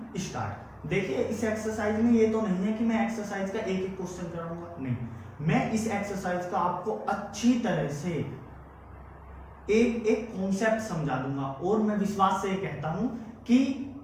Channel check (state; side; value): identical; both; correlation 1.00